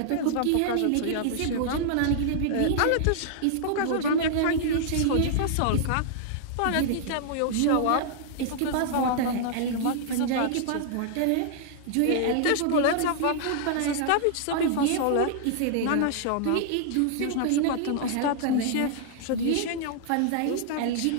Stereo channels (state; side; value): different; both; correlation -0.01